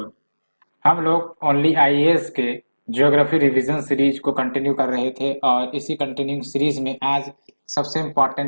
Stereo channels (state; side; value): inverted; both; correlation -1.00